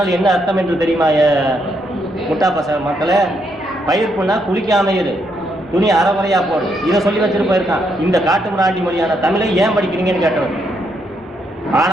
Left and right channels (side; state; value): both; normal; correlation 0.77